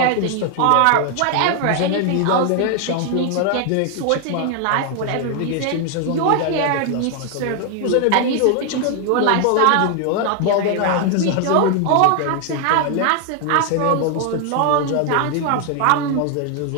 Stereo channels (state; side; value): different; both; correlation 0.00